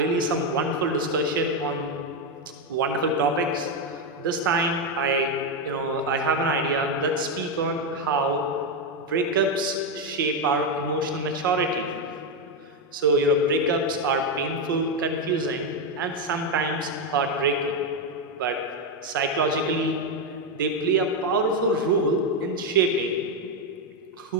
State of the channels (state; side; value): normal; both; correlation 0.06